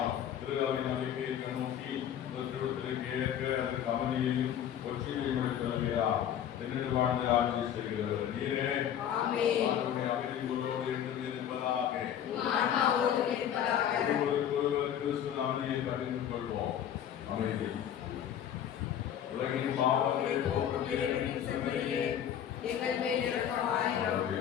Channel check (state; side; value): quieter; right; 9.8 dB